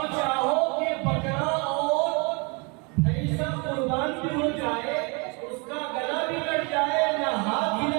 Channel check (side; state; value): left; quieter; 31.5 dB